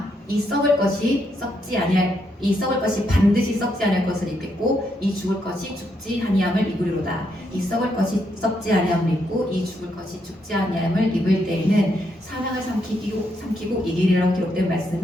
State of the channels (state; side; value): normal; both; correlation 0.78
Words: 이 썩을 것이 반드시 썩지 아니할 것을 입겠고 이 죽을 것이 죽지 아니함을 입으리로다. 이 썩을 것이 썩지 아니함을 입고 이 죽을 것이 죽지 아니함을 입을 때에는 사망을 삼키고 이기리라고 기록된